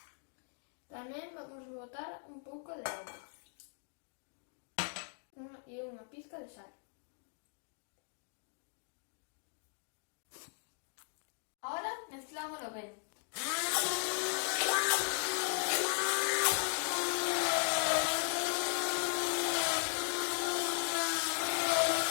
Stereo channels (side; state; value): right; silent; 53 dB below the other